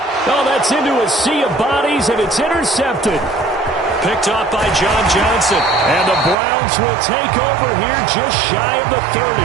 Oh, that's into a sea of bodies, and it's intercepted. Picked off by John Johnson. And the Browns will take over here just shy of the 30.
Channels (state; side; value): drops out; left; at 6.4 s